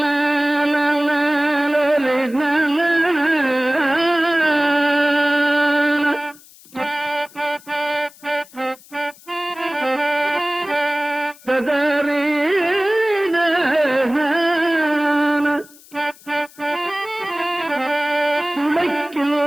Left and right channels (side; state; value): left; noise; hiss, 23 dB below the sound